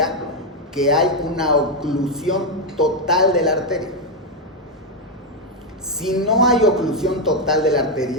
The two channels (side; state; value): both; normal; correlation 0.03